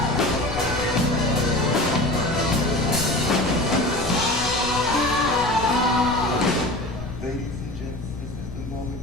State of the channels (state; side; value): noise; left; rumble, 10 dB below the sound